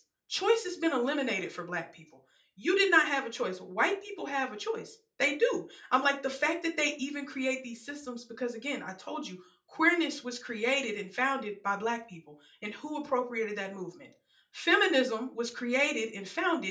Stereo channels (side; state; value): both; identical; correlation 1.00